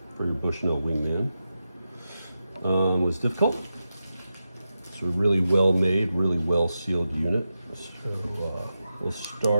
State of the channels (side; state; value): both; inverted; correlation -0.90